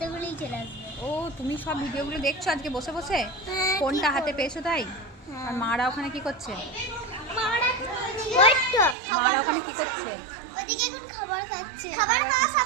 চলে আসবে। ও, তুমি সব ভিডিওগুলো দেখছো আজকে বসে বসে? হ্যাঁ, ফোনটা কি হাতে করব? পেয়েছো তাই? হ্যাঁ। আর মারা ওখানে কি করছে? ওই তো, মারা ওখানে কি করছে? ওদিকে এখন খাবার খাচ্ছে। খাবার খাওয়া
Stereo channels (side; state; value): left; drops out; at 9.0 s